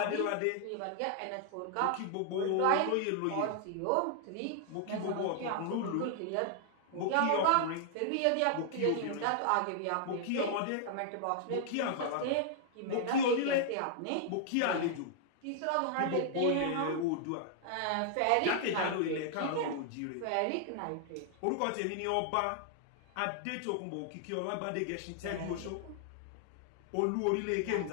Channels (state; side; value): different; both; correlation -0.01